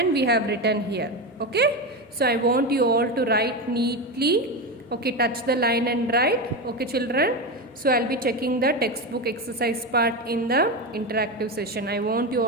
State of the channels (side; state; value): both; normal; correlation 0.17